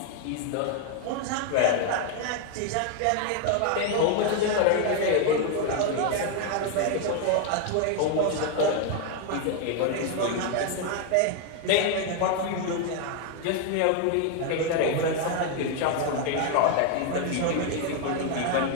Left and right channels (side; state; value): both; different; correlation 0.00